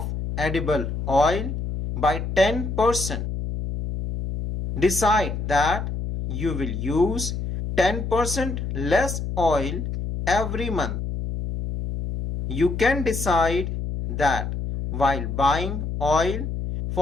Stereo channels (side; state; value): left; noise; hum, 4 dB below the sound